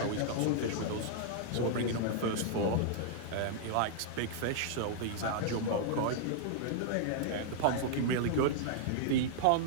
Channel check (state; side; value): different; both; correlation -0.01